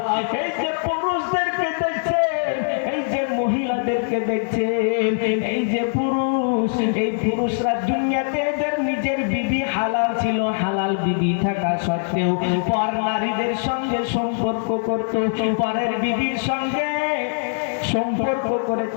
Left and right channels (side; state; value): right; silent; 64 dB below the other